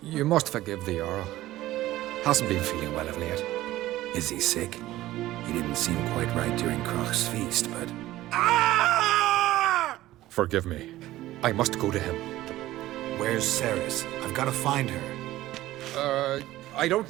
You must forgive the Jarl. Hasn't been feeling well of late. Is he sick? He didn't seem quite right during Croc's feast, but... Forgive me. I must go to him. Where's Ceres? I've got to find her. I don't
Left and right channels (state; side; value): quieter; left; 15.8 dB